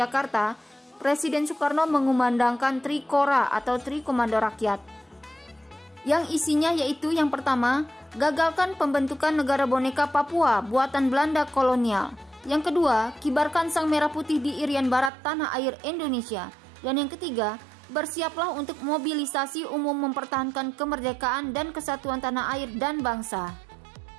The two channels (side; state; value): left; drops out; at 15.1 s